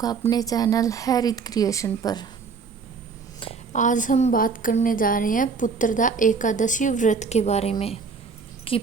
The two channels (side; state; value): left; quieter; 5.1 dB